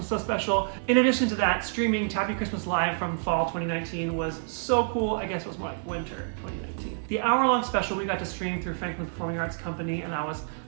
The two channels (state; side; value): silent; left; digital silence